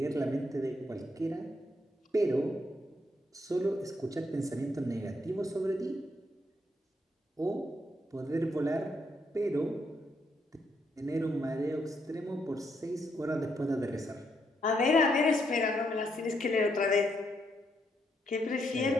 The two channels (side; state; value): both; normal; correlation 0.76